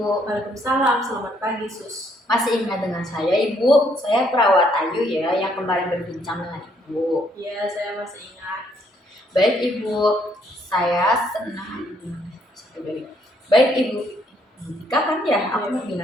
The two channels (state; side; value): normal; both; correlation 0.69